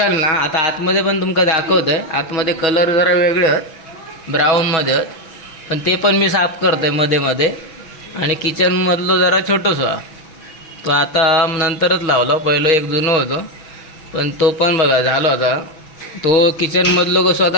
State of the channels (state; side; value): late; right; 6.1 ms